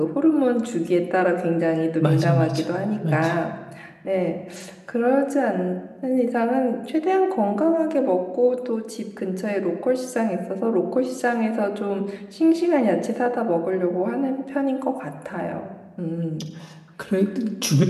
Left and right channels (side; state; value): both; identical; correlation 1.00